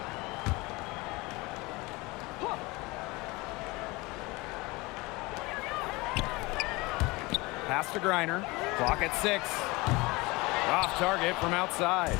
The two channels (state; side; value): quieter; right; 23.6 dB